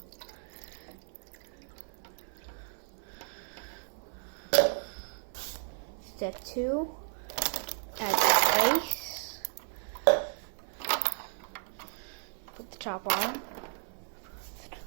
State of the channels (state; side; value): silent; left; 55 dB below the other